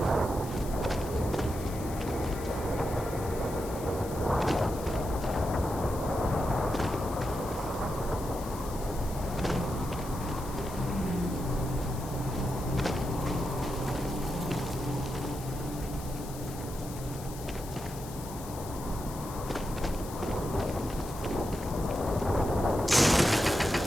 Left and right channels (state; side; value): noise; left; hiss, 15 dB below the sound